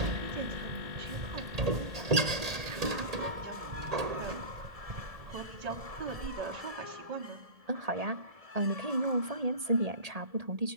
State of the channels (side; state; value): left; late; 1.8 ms